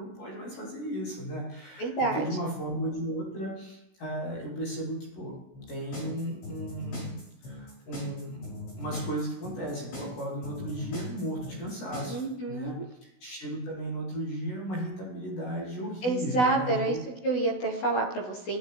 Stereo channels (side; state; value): right; late; 16 ms